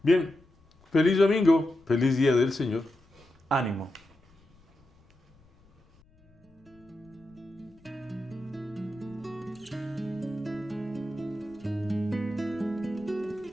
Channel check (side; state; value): left; noise; rumble, 30 dB below the sound